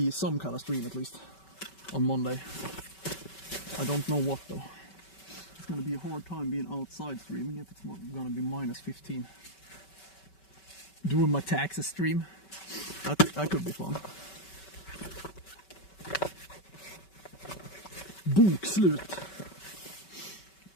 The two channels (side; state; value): right; late; 5.2 ms